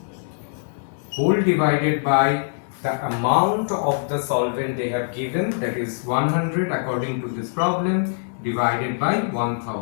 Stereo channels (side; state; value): right; silent; digital silence